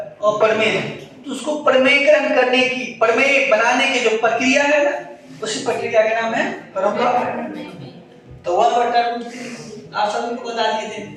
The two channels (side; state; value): both; identical; correlation 1.00